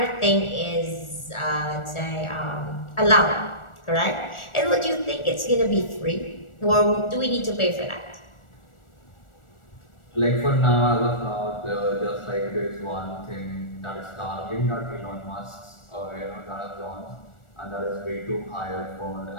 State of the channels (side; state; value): right; late; 1.4 ms